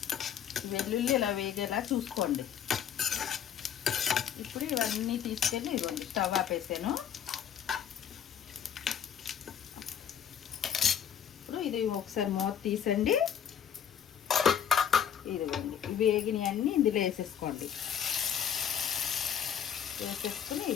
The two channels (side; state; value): right; quieter; 8.7 dB